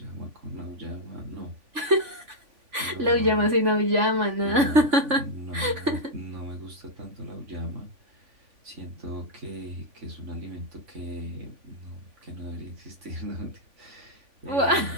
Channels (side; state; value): left; late; 3.5 ms